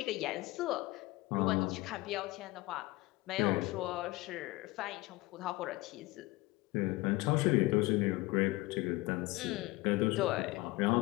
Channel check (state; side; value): quieter; right; 20.8 dB